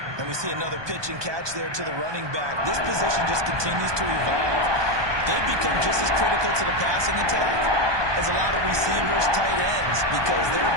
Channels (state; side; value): late; left; 1.2 ms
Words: And we see another pitch and catch there to the running back. This position just continues to evolve. They become just as critical to the passing attack as a lot of receivers, tight ends, because their